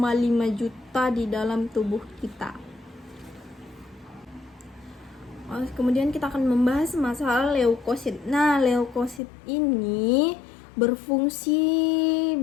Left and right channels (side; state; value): right; drops out; at 9.2 s